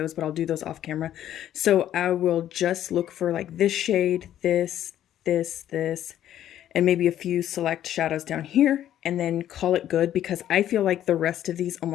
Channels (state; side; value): quieter; right; 11.5 dB